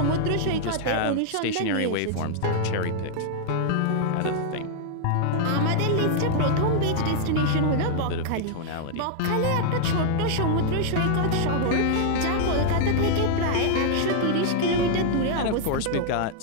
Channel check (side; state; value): both; different; correlation 0.00